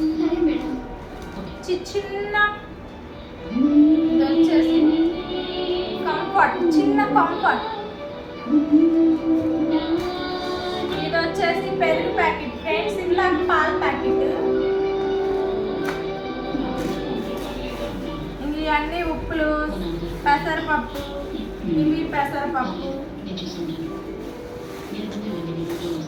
చిన్న ఇది వచ్చేసి కంఫర్ట్, చిన్న కంఫర్ట్, ఇది వచ్చేసి పెరుగు ప్యాకెట్ ఫ్రెండ్స్, ఇలా పాల ప్యాకెట్, ఇవన్నీ ఉప్పులు, పెసరపప్పు, ఇవి పెసరపప్పు,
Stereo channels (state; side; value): identical; both; correlation 1.00